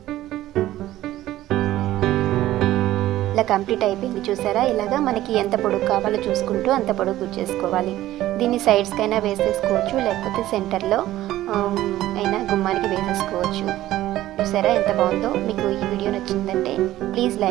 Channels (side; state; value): left; quieter; 14.7 dB